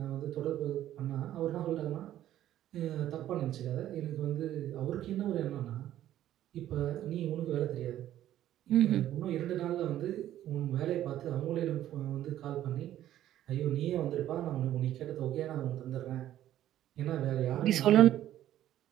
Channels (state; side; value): quieter; left; 12.5 dB